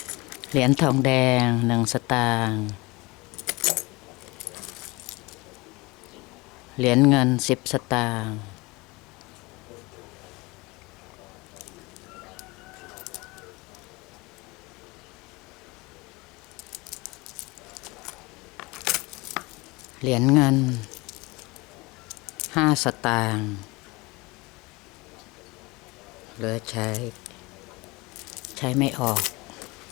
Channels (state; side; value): quieter; right; 24.0 dB